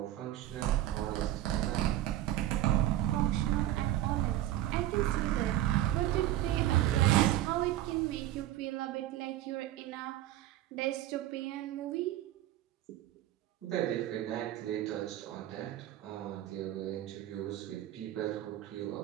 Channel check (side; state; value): left; quieter; 13.7 dB